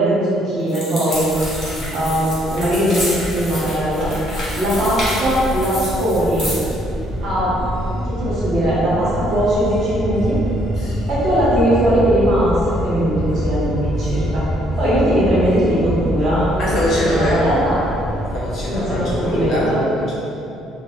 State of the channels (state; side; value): normal; both; correlation 0.68